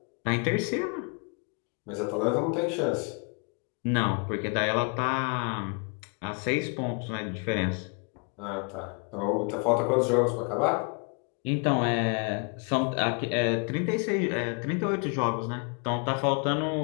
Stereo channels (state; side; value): quieter; right; 35.9 dB